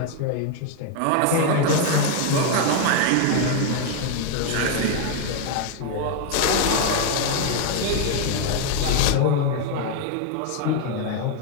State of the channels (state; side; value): different; both; correlation 0.01